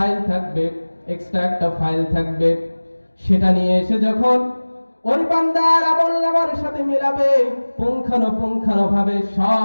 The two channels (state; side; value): inverted; both; correlation -1.00